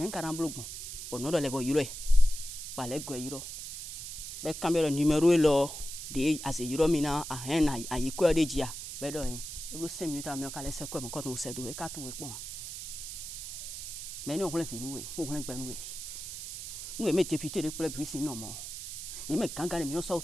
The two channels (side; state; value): right; noise; hiss, 8 dB below the sound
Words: karam blogun ono do le bo yuro e wa le go yuro be camera numéro e lo de as yuro mi na a hen na ayi ko de jia be do yin e 5 minutes a mi ka le se ko mo ko no se do e ka tun we pon mais nous on fi nous on gbe nous me député de pour puis non mo il me ganga mi no so